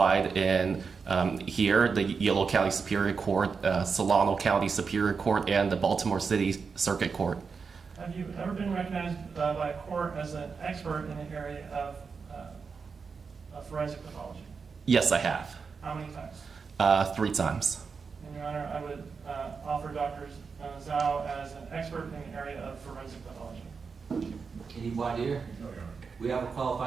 in here, the Yolo County Superior Court, Solano County Superior Court, and the Baltimore City Circuit Court. Have you ever been recognized by a court as an expert in the area of forensic pathology? Yes, I have. How many times? 3 times. And Your Honor, I would offer Dr. Zhao as an expert in the area of forensic pathology. Any voir dire? No, Your Honor. We have a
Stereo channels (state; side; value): quieter; left; 5.3 dB